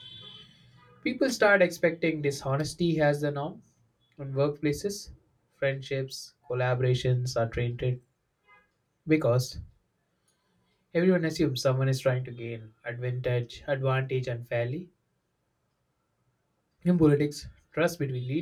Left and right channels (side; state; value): both; identical; correlation 1.00